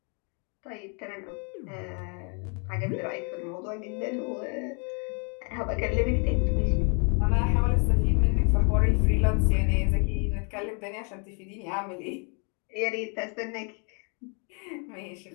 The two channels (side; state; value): right; quieter; 37.6 dB